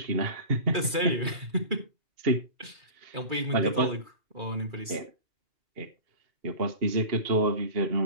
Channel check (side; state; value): left; late; 2.4 ms